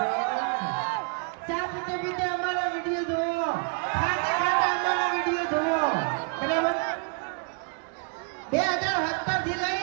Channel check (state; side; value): quieter; left; 38.3 dB